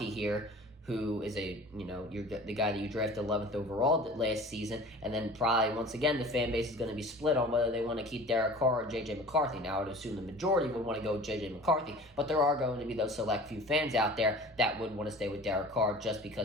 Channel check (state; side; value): normal; both; correlation 0.42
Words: here, who is you're the guy that you drafted 11th overall last season, and then probably once again the fan base is going to be split on whether they want to keep Derek Carr or JJ McCarthy. Now I would assume the majority would want to go with JJ McCarthy, but there are going to be those select few fans out there that would want to stay with Derek Carr just